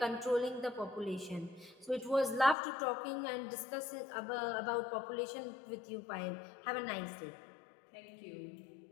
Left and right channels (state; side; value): drops out; right; at 2.6 s